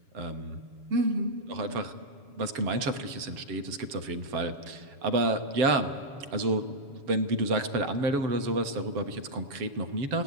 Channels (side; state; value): left; late; 7.2 ms